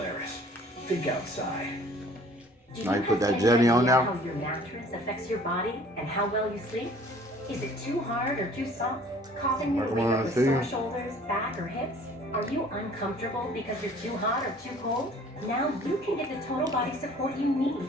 Think outside. Now you put that jelly on now? How your mattress affects your body and how well you sleep? Is it too hard or too soft? Causing you to wake up with sore shoulders, back, or hips? Are you uncomfortable because you're too hot or too cold? Now you can get the total body support you need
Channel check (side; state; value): both; normal; correlation 0.52